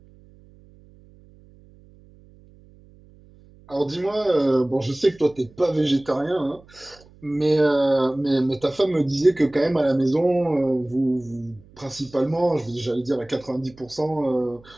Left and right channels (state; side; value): noise; right; hum, 26 dB below the sound